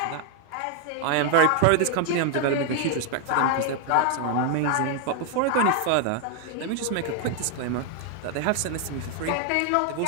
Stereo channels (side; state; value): both; different; correlation 0.00